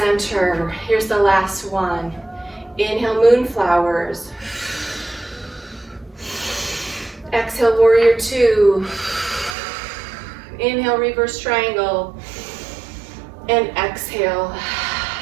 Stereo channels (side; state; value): left; drops out; at 9.6 s